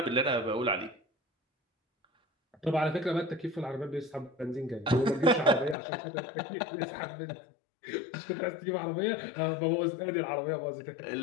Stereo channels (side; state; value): right; drops out; at 5.8 s